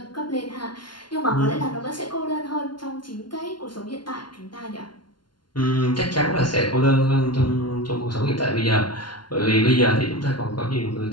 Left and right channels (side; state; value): right; late; 0.71 ms